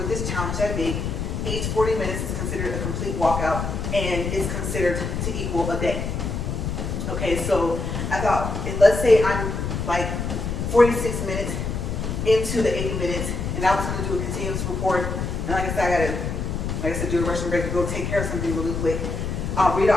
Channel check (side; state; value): left; noise; rumble, 3 dB below the sound